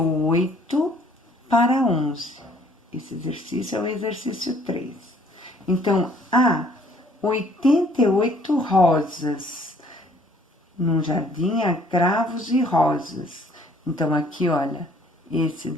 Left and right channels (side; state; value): both; normal; correlation 0.59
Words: para 11. Esse exercício é o exercício 3. Então, há 88 rosas. Num jardim há cravos e rosas. Então, aqui, olha, esse